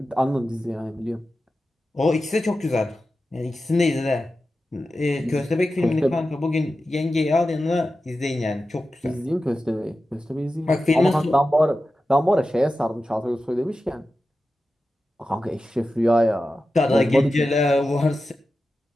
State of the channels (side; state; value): both; normal; correlation 0.93